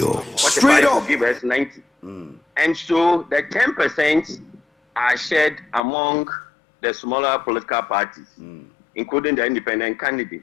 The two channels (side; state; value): right; drops out; at 5.8 s